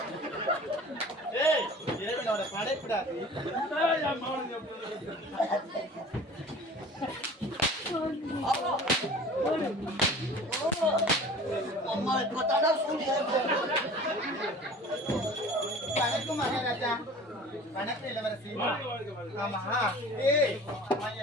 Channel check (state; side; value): normal; both; correlation 0.43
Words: படைப்பிடாது. வணக்கம் மகாராஜா. வணக்கம் இளவரசி. ஆமா,